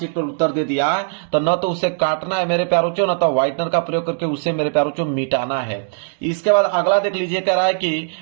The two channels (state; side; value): silent; left; digital silence